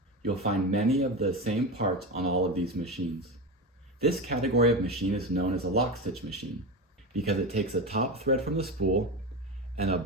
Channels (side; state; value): both; normal; correlation 0.20